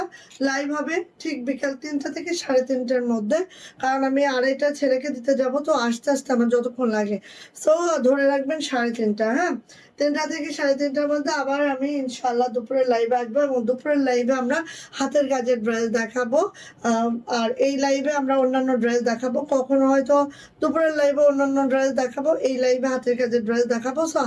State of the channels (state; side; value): identical; both; correlation 1.00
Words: লাইভ হবে ঠিক বিকাল 3টা থেকে 3:30-র মধ্যে, কারণ আমি আড়াইটা ছেলেকে দিতে যাব, তো আস্তে আস্তে আমার যতক্ষণ লাগে। সো ধরে রাখবেন 3:30, হ্যাঁ, 3টা থেকে 3:30-র মধ্যে আবার আমি ইনশাআল্লাহ দুপুরের লাইভে আসবো, এবং দুপুরের লাইভে আমরা হাতের কাজের ড্রেস দেখাবো। আর এই লাইভে আমরা অন্যান্য ড্রেস দেখাবো, কখনো হয়তো দুপুরের লাইভে অন্যান্য ড্রেস দেখাবো, এই লাইভে হাতের কাজের ড্রেস দেখাবো। সো